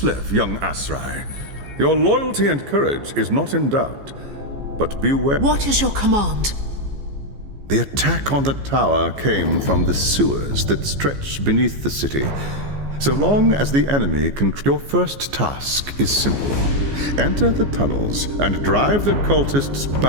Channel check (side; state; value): left; late; 14 ms